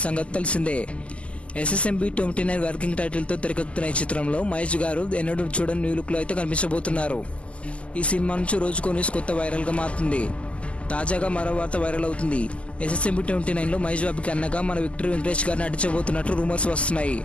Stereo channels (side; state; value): right; late; 0.058 ms